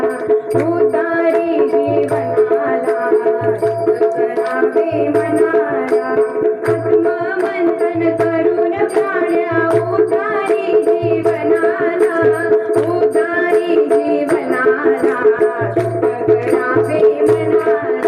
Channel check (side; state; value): both; identical; correlation 1.00